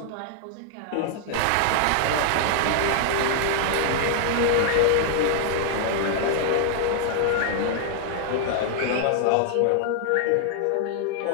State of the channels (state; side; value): different; both; correlation -0.01